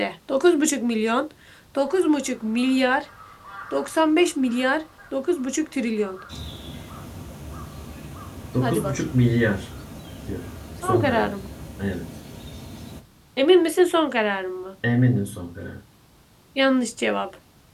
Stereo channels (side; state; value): both; identical; correlation 1.00